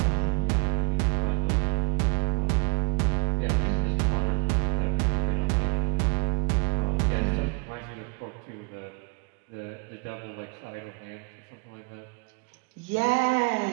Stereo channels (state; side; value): quieter; left; 33.8 dB